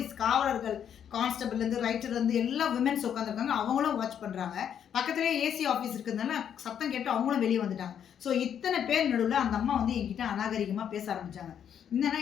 காவலர்கள், கான்ஸ்டபிள்லேருந்து ரைட்டர்லேருந்து எல்லா விமென்ஸ் உட்காந்துருக்காங்க. அவங்களும் வாட்ச் பண்ணுறாங்க. பக்கத்துலேயே ஏசி ஆஃபீஸ் இருக்கிறதுனால சத்தம் கேட்டு அவங்களும் வெளியே வந்துட்டாங்க. ஸோ இத்தனை பேர் நடுவில் அந்த அம்மா என்கிட்ட அநாகரிகமாக பேச ஆரம்பித்தாங்க. என்னன்னா,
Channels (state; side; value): quieter; right; 8.8 dB